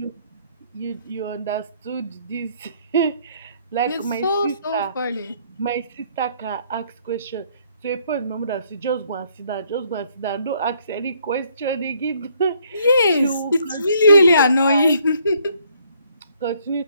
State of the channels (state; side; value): inverted; both; correlation -0.66